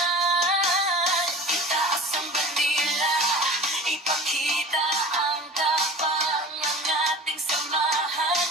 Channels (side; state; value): both; normal; correlation 0.38